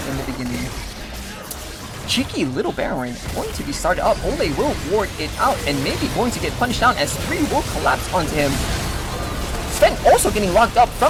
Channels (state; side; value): identical; both; correlation 1.00